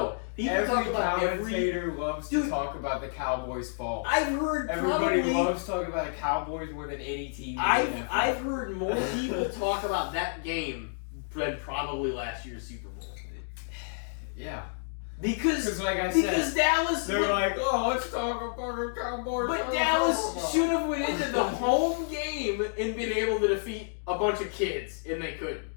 Every commentator loves to talk about the Cowboys' fall. I've heard everybody loves talking about the Cowboys more than any team. I've heard more people talk about that game than probably last year's Super Bowl. Yeah, because like I said, Dallas. They're like, oh, let's talk about the Cowboys. But Dallas should have went into the home game and been able to defeat a bunch of kids, and they couldn't.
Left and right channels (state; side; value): silent; right; digital silence